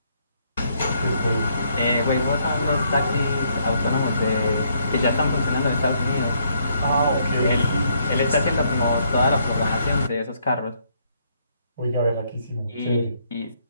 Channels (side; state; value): both; inverted; correlation -0.71